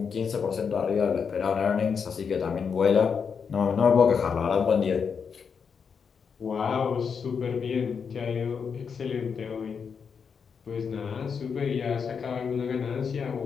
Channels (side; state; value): right; quieter; 6.3 dB